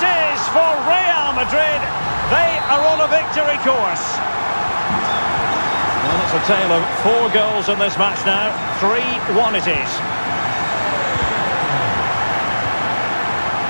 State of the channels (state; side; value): inverted; both; correlation -1.00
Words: is for Real Madrid. They are on a victory course. Well, it's a tale of 4 goals in this match now. 3-1 it is.